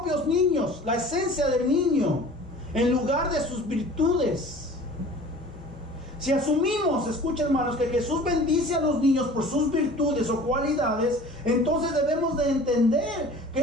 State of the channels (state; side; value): normal; both; correlation 0.44